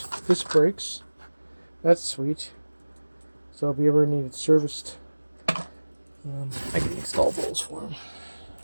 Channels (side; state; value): both; inverted; correlation -1.00